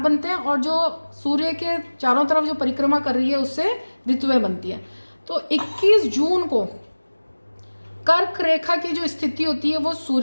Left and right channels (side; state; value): both; inverted; correlation -1.00